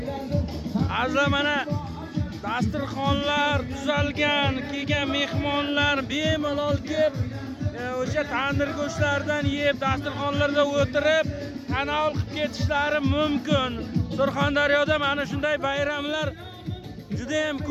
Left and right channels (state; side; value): identical; both; correlation 1.00